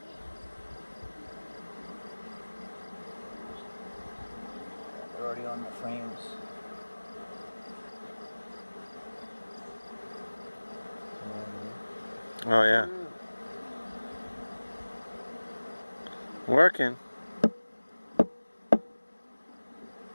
They're already on the frames. Oh, yeah. Working.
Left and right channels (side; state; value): both; inverted; correlation -1.00